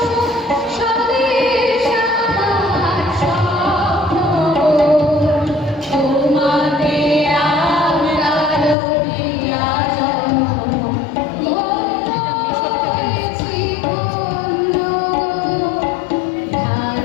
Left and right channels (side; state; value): right; drops out; at 8.8 s